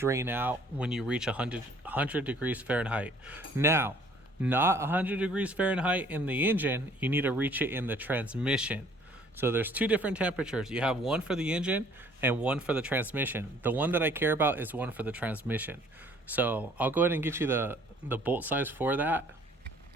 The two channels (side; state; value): both; normal; correlation 0.57